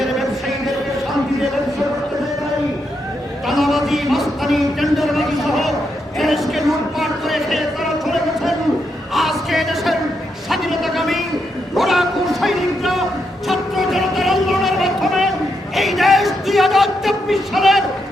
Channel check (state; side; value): normal; both; correlation 0.81